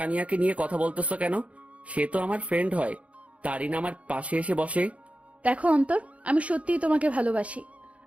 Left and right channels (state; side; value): late; left; 0.064 ms